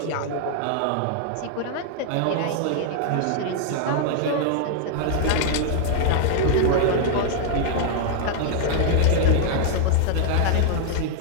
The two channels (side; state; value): both; different; correlation 0.00